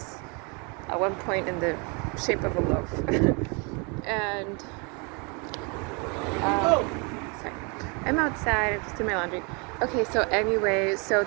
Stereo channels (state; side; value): quieter; left; 32.4 dB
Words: at one point in the shape of a loaf. And sorry, I'm outside. I'm just doing my laundry. Okay, so anyway, so